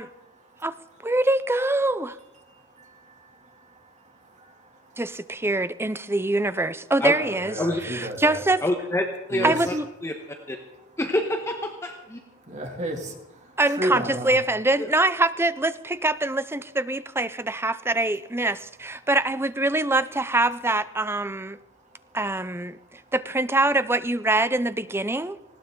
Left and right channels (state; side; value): normal; both; correlation 0.55